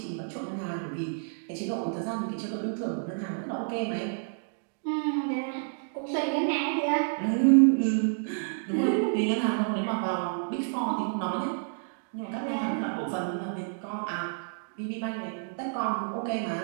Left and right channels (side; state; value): left; silent; digital silence